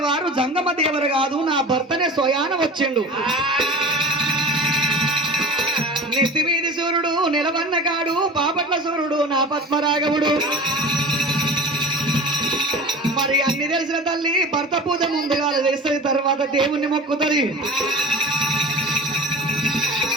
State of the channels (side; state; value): both; normal; correlation 0.36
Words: వారు జంగమ దేవరు కాదు నా భర్తనే స్వయాన వచ్చిండు నీ నా పద్మరాఘవుడు మరి అన్ని తెలిసిన తల్లి భర్త పూజ ముందుగా చేస్తుంది తర్వాత దేవుణ్ణి మొక్కుతుంది